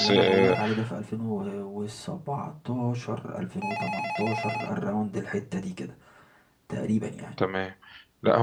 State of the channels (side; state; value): both; identical; correlation 1.00